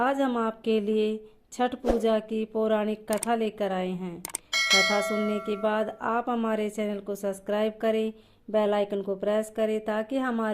हम आपके लिए छठ पूजा की पौराणिक कथा लेकर आए हैं। कथा सुनने के बाद आप हमारे चैनल को सब्सक्राइब करें, बेल आइकन को प्रेस करें ताकि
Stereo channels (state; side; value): identical; both; correlation 1.00